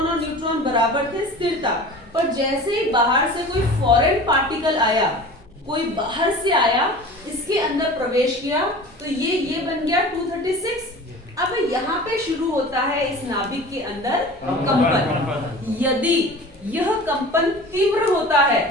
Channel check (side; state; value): both; normal; correlation 0.39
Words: और न्यूट्रॉन बराबर थे, स्थिर था। पर जैसे ही बाहर से कोई फॉरेन पार्टिकल आया, कोई बाहर से आया, इसके अंदर प्रवेश किया, तो ये बन गया 236। अब यहाँ पे शुरू होता है इस नाभिक के अंदर कंपन। यदि यह कंपन तीव्र होता है,